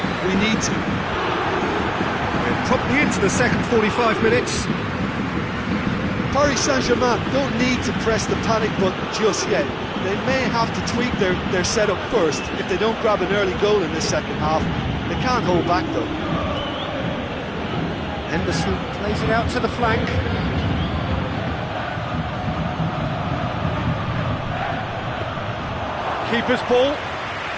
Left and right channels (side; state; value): both; identical; correlation 1.00